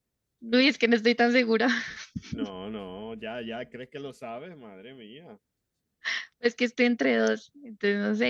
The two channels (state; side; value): identical; both; correlation 1.00